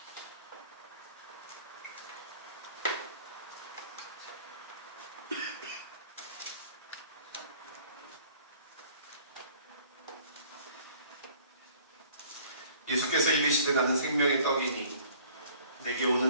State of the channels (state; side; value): inverted; both; correlation -0.54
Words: 예수께서 이르시되 나는 생명의 떡이니 내게